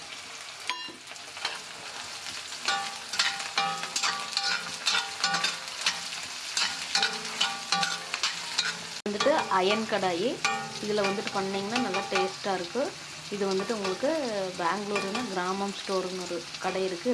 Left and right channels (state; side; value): identical; both; correlation 1.00